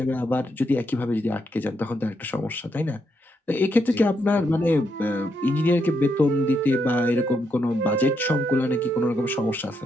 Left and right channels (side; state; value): both; normal; correlation 0.79